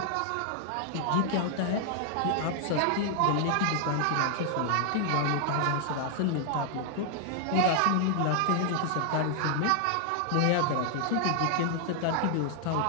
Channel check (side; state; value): both; different; correlation 0.00